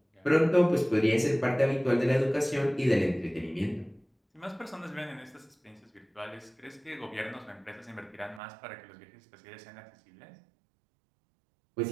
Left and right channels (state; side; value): drops out; left; at 8.4 s